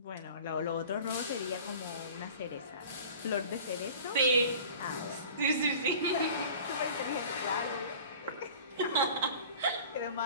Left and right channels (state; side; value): inverted; both; correlation -0.42